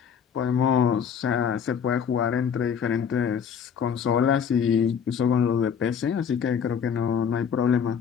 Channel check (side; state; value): right; quieter; 7.4 dB